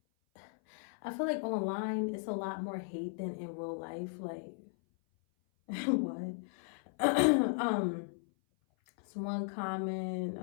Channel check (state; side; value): silent; right; 54 dB below the other